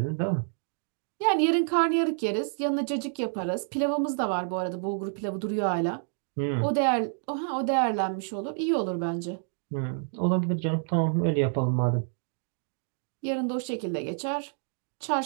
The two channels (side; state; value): left; silent; digital silence